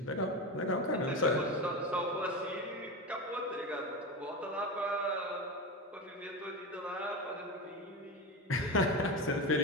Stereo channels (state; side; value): normal; both; correlation 0.21